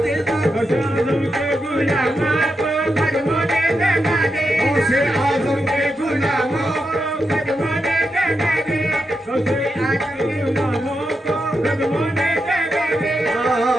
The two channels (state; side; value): normal; both; correlation 0.86